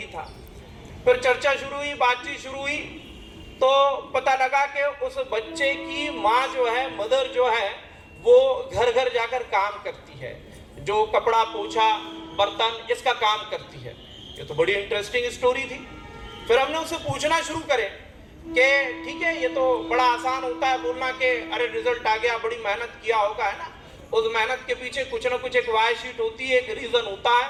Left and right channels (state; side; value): identical; both; correlation 1.00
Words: था। फिर चर्चा शुरू हुई, बातचीत शुरू हुई, तो पता लगा कि उस बच्चे की माँ जो है, मदर जो है, वो घर घर जाकर काम करती है, जो कपड़ा पोछा बर्तन इसका काम करती है। ये तो बड़ी इंटरेस्टिंग स्टोरी थी। फिर हमने उससे पूछना शुरू करे कि ठीक है, ये तो बड़ा आसान होता है बोलना कि अरे रिजल्ट आ गया, बड़ी मेहनत किया होगा, है ना। उस मेहनत के पीछे कुछ ना कुछ एक वाई शीट होती है, एक रीजन होता है